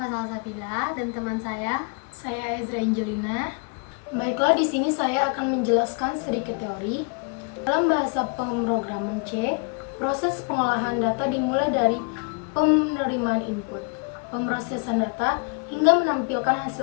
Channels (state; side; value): quieter; right; 35.7 dB